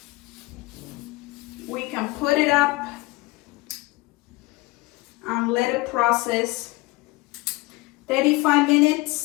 We can put it up and let it process 35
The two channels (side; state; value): right; quieter; 21.9 dB